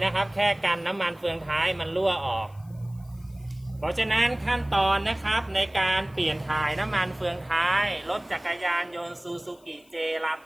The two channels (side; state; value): left; noise; hiss, 30 dB below the sound